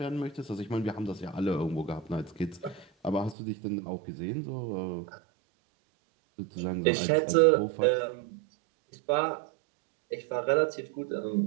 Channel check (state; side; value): drops out; left; at 3.4 s